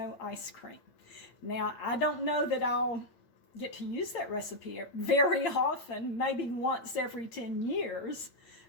ice cream. Now, I don't know that I'll get to use that recipe very often, maybe once every 10 years,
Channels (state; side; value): late; right; 8.7 ms